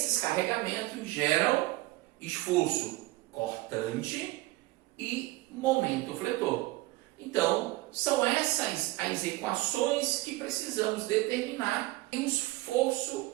carregamentos geram esforço cortante e momento fletor. Então, são essas as equações que precisamos determinar em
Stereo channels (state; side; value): quieter; left; 19.7 dB